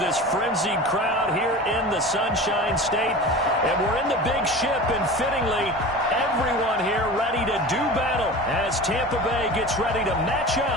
frenzied crowd here in the Sunshine State. And we're in the big ship, and fittingly, everyone here ready to do battle as Tampa Bay gets ready to match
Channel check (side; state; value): both; normal; correlation 0.34